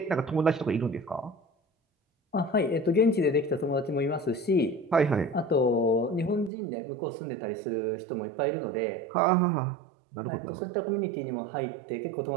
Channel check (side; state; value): left; drops out; at 6.5 s